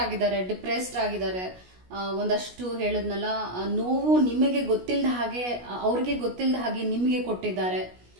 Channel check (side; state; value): left; late; 16 ms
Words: ಆಗಿದ್ದಾರೆ, ಡಿಪ್ರೆಸ್ಡ್ ಆಗಿದ್ದಾರೆ. ಒಂದಷ್ಟು ಹೇಳಿದ್ನಲ್ಲ, ನೋವು ನಿಮಗೆ ಗೊತ್ತಿಲ್ಲದ ಹಾಗೆ ಅವ್ರಿಗೆ ಗೊತ್ತಿಲ್ಲದ ಹಾಗೆ ನಿಮಗೆ ಕೊಟ್ಟಿದ್ದಾರೆ.